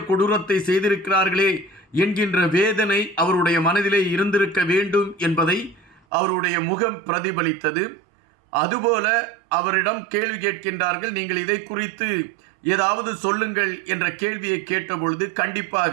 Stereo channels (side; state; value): left; drops out; at 6.0 s